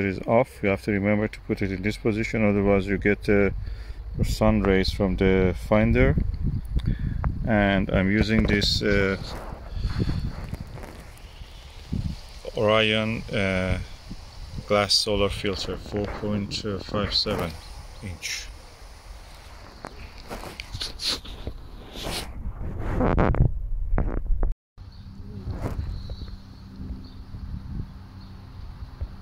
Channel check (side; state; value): both; identical; correlation 1.00